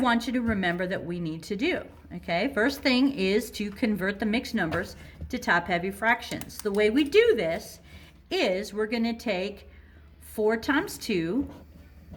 you to remember that we need to do. Okay, first thing is to convert the mixed numbers to top-heavy fractions. The way we do this is we're going to take 4 times 2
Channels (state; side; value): identical; both; correlation 1.00